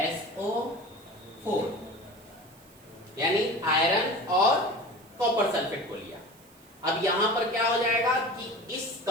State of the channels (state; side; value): noise; right; hiss, 26 dB below the sound